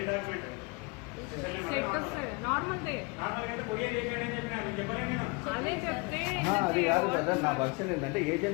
అది కాదు కదా, నా వర్షన్ ఏంటంటే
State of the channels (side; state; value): right; quieter; 28.9 dB